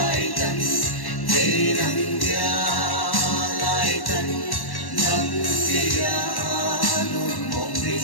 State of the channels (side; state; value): right; late; 1.1 ms